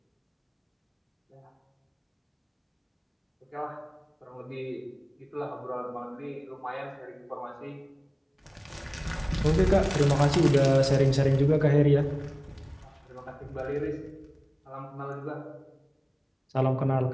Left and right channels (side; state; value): both; identical; correlation 1.00